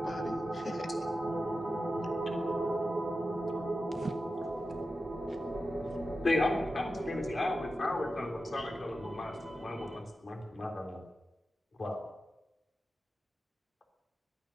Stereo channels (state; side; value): normal; both; correlation 0.92